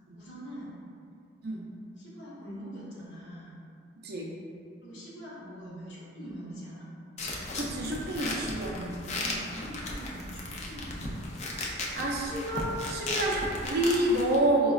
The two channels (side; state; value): both; normal; correlation 0.28